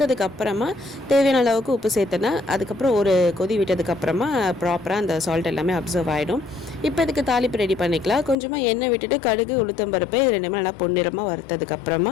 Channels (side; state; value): right; drops out; at 8.3 s